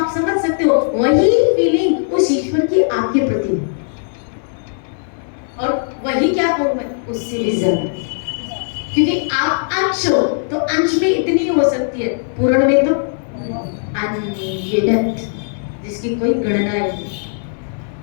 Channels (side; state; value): right; silent; 67 dB below the other